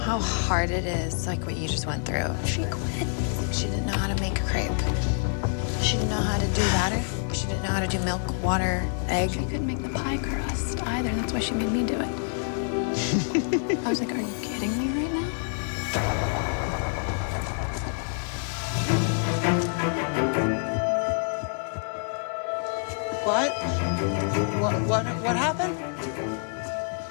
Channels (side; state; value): right; silent; 60 dB below the other